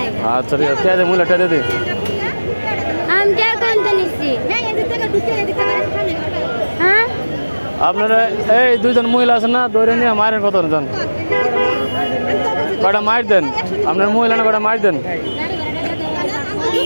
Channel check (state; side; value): inverted; both; correlation -1.00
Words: আচ্ছা ঠিক আছে দে মুলে টেরে দে। আমি কে কোনটা নিচ্ছি হ্যাঁ আপনারা এই দুইজন মহিলা আছেন না দৌড়ে নিয়ে মারেন কত জন কটা মার দেন আপনার মহিলা না কটা মার দেন।